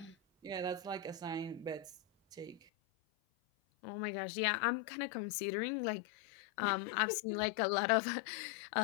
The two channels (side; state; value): right; drops out; at 2.7 s